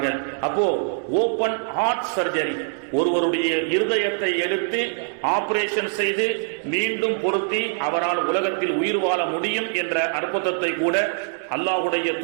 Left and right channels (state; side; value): silent; left; 63 dB below the other